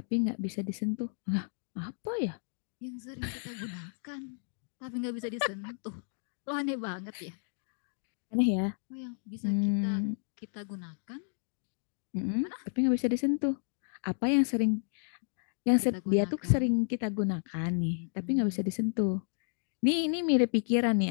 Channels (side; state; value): right; silent; digital silence